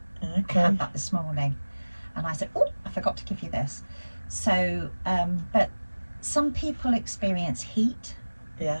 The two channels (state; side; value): inverted; both; correlation -1.00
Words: Okay. I had that this morning, and I said, oh, I forgot to give you this. So, but some people experience heat.